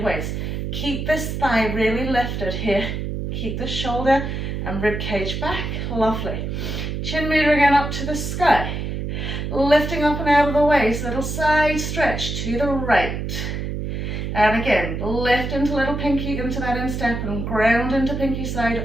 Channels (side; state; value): right; noise; hum, 4 dB below the sound